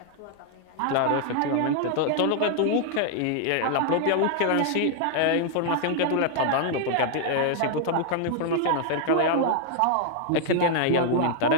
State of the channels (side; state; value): both; different; correlation 0.00